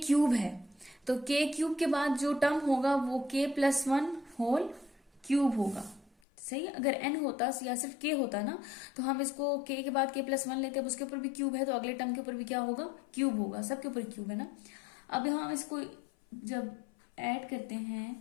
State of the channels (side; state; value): right; drops out; at 6.1 s